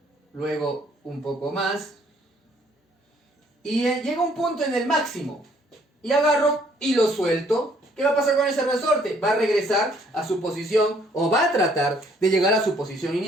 luego un poco más, y llega un punto en el máximo, y agarro y lo suelto. ¿Qué va a pasar con ese resorte? Va a regresar a su posición, o va a tratar de llegar a su posición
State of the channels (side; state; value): both; normal; correlation 0.63